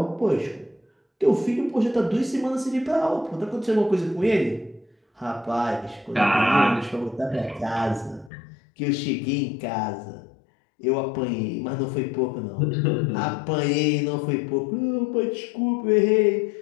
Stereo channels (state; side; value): drops out; right; at 8.3 s